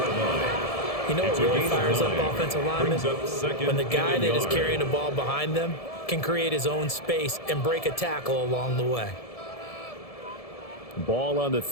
You know what really fires up offensive linemen? When the guy that is carrying the ball behind them can create his own space and break a tackle along the way. Ball on the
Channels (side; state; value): right; late; 1.7 ms